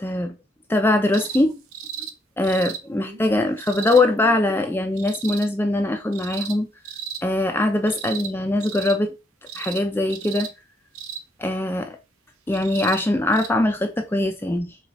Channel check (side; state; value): both; normal; correlation 0.73